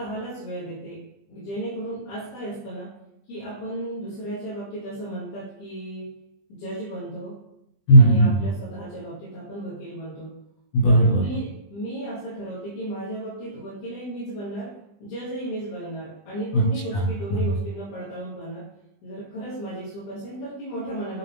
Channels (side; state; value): right; late; 20 ms